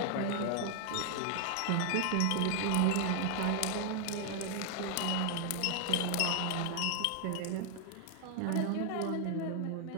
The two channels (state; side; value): different; both; correlation 0.00